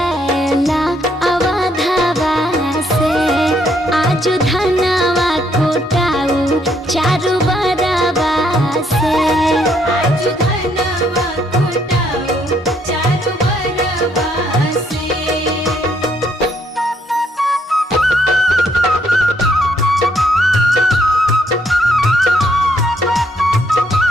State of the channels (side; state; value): both; normal; correlation 0.71